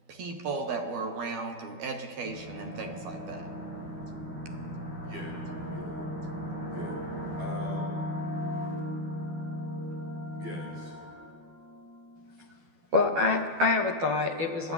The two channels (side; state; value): left; late; 12 ms